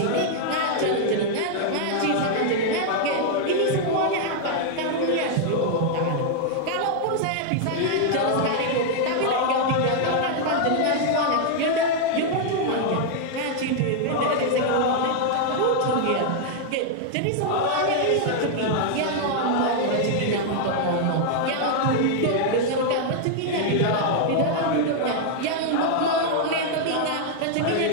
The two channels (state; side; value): different; both; correlation 0.00